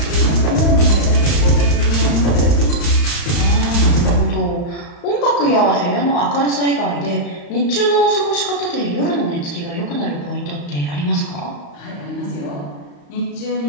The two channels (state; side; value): late; right; 35 ms